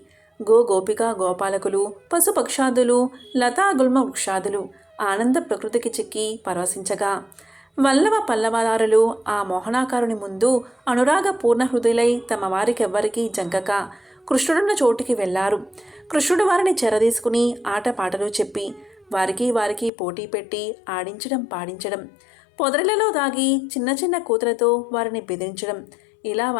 గోపిక గోపాలకులు, పశుపక్షాదులు, లతాగుల్మ వృక్షాదులు ఆనంద ప్రకృతికి చిక్కి పరవశించగా వల్లవ పల్లవదారులు ఆ మోహనాకారుని ముందు అనురాగ పూర్ణ హృదయులై తమ వారికెవ్వరికీ జంకక కృష్ణుడున్న చోటికి వెళ్లారు. కృష్ణుడు వారిని చెరదీసుకుని ఆటపాటలు చెప్పి వారికి పోటీ పెట్టి ఆడించడం పాడించడం, పొదరిలలో దాగి చిన్న చిన్న కూతులతో వారిని బెదిరించడం, ఇలా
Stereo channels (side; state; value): right; drops out; at 19.9 s